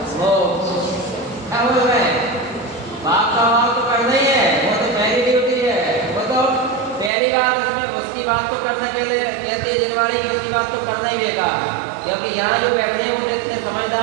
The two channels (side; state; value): left; drops out; at 7.1 s